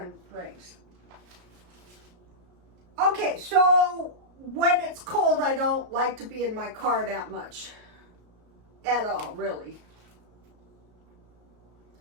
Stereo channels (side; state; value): left; late; 34 ms